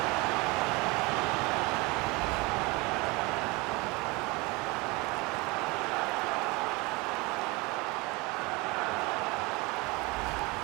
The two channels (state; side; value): quieter; left; 25.2 dB